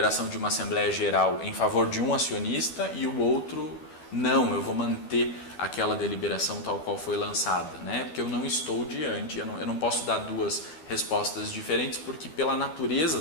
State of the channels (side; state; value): right; late; 12 ms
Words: de uma Assembleia Geral em favor de um acionista e o outro não, eu vou manter aquela deliberação tal qual foi lançada, né? Porque eu não estou diante, eu não posso dar 2 respostas diferentes, porque pela natureza